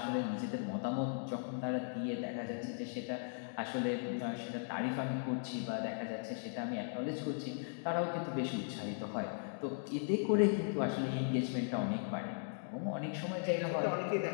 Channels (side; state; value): right; silent; digital silence